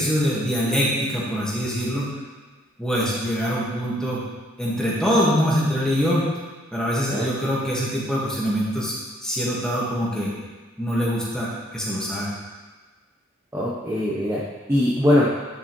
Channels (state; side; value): normal; both; correlation 0.68